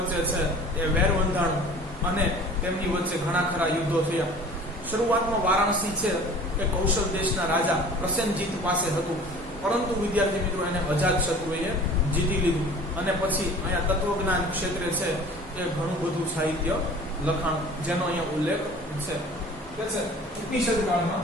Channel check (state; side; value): normal; both; correlation 0.45